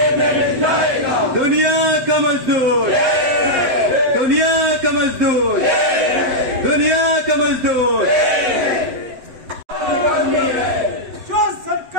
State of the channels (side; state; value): left; late; 8.0 ms